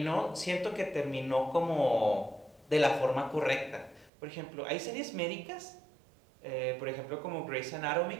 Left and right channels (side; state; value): left; drops out; at 4.1 s